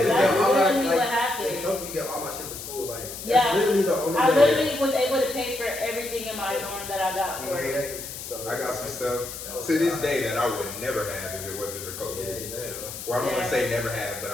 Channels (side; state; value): left; noise; hiss, 10 dB below the sound